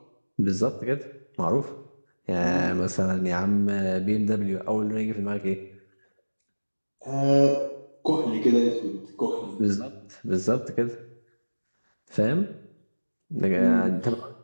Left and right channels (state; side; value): inverted; both; correlation -1.00